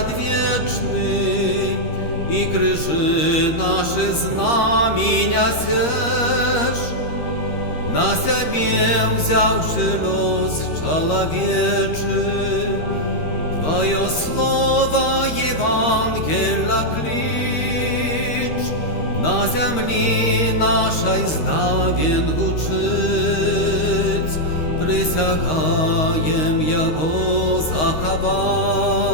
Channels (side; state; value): right; late; 13 ms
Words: і крижи наші знаміння сеш, на себе взявши лос человечий, Твое слово Евангелия клич, на землі нашій здавен гучить, присягаєм його заховать